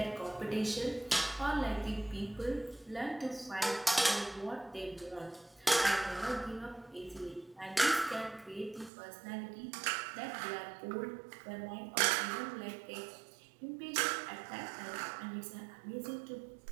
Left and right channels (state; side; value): drops out; left; at 8.9 s